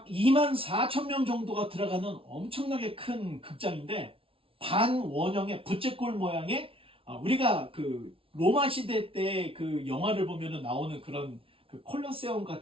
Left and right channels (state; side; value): late; left; 0.26 ms